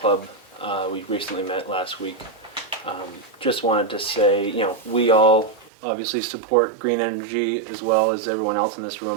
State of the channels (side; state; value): left; drops out; at 5.7 s